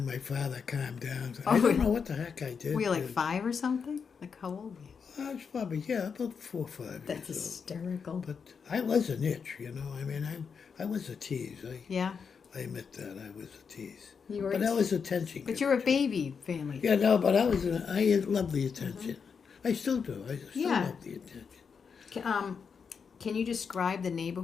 my father calmed down. I don't know what the heck I did. Were you like 5 or something? Like how old were you? I was probably, about 4 or 5 That's years hysterical. old. But I was an itch, you know. I mean, I was a tease. Yeah. I admit that I was a tease. You were But I was attention. But you're a baby family. Yeah, no, but I love the attention. I still do. I still Yeah. love the attention. Can you describe the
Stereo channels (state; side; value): quieter; right; 6.1 dB